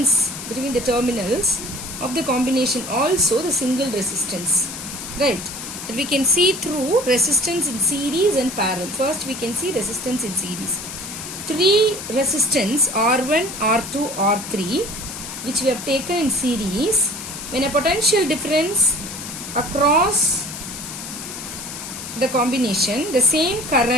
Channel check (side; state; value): left; noise; hiss, 9 dB below the sound